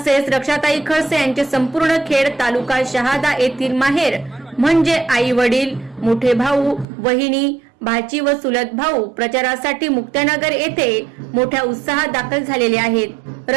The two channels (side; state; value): left; drops out; at 6.9 s